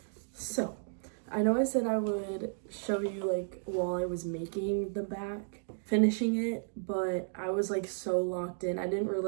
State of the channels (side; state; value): left; silent; digital silence